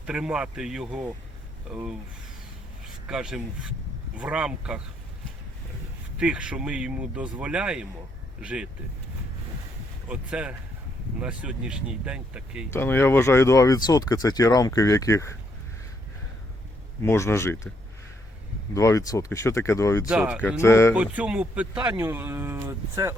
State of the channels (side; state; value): both; normal; correlation 0.74